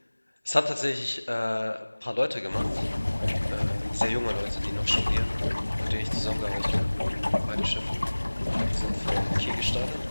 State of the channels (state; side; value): inverted; both; correlation -1.00